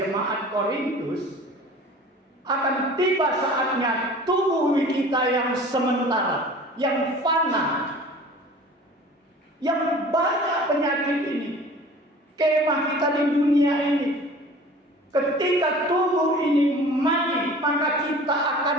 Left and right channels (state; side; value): normal; both; correlation 0.44